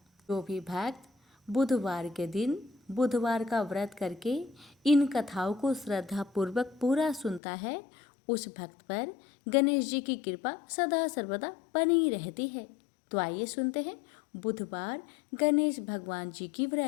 जो भी भक्त बुधवार के दिन बुधवार का व्रत करके इन कथाओं को श्रद्धा पूर्वक पूरा सुनता है, उस भक्त पर गणेश जी की कृपा सदा सर्वदा बनी रहती है। तो आइए सुनते हैं बुधवार गणेश भगवान जी की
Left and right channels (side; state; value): right; drops out; at 7.4 s